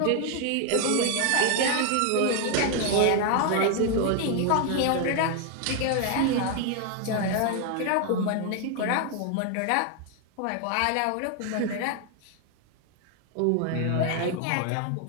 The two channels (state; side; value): different; both; correlation 0.01